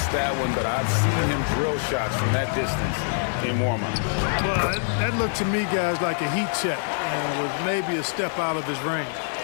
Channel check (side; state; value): right; silent; digital silence